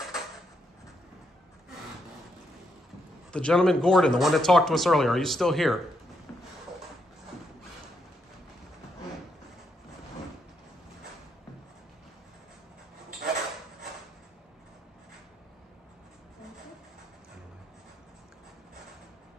The gentleman Gordon, the one that talked to us earlier, are you still here?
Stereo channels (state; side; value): normal; both; correlation 0.78